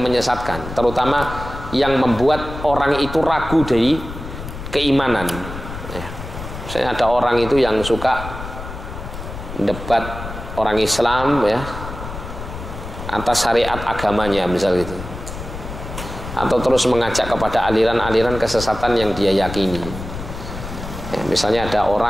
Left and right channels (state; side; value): noise; left; rumble, 10 dB below the sound